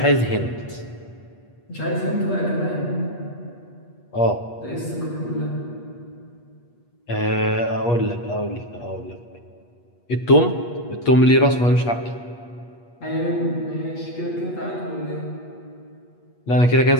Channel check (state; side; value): late; right; 8.4 ms